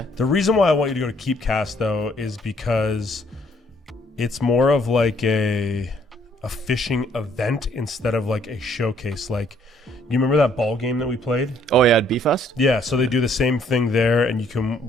The reason why I want you to go to Keepcast, though, is because it's more of like a fishing event instead of like a showcase. Like, you remember that ball game that we played? Oh yeah, at B-Fest? Yeah, so they do the same thing there, and you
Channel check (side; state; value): both; normal; correlation 0.65